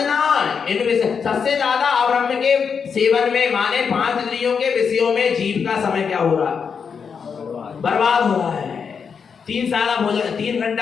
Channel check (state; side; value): quieter; right; 6.3 dB